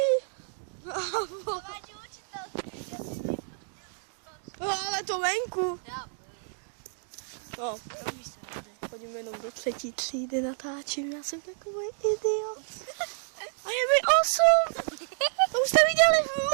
No, ale to venku. No, chodím jenom do 3. třídy, natáčím, já jsem takový idiot. A je mi 8. To už jste viděli v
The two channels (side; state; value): left; silent; digital silence